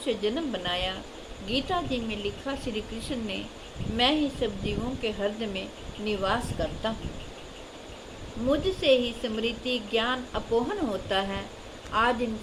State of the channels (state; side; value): identical; both; correlation 1.00